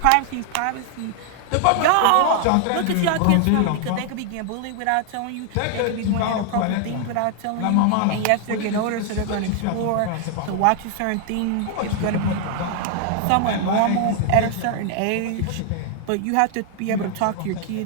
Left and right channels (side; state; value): both; different; correlation 0.00